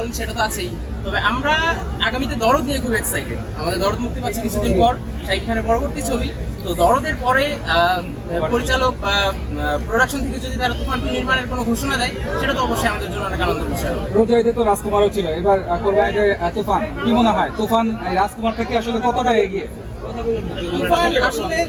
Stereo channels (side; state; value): both; identical; correlation 1.00